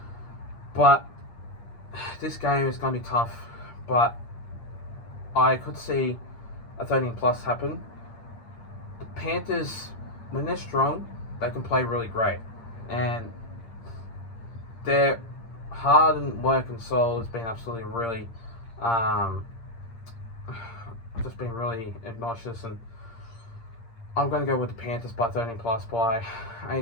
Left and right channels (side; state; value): right; late; 8.7 ms